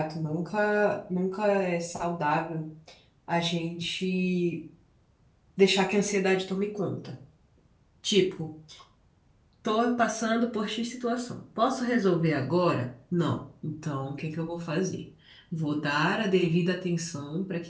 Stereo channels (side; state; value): both; identical; correlation 1.00